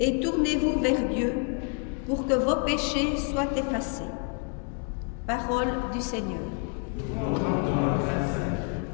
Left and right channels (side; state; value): right; quieter; 39.6 dB